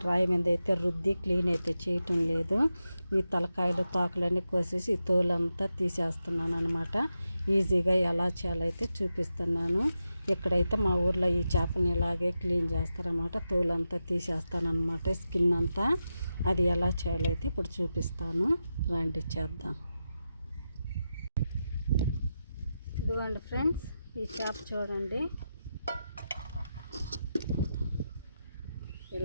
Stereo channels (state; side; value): inverted; both; correlation -0.89